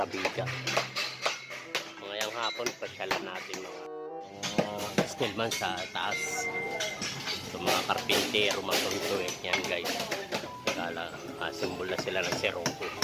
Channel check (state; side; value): identical; both; correlation 1.00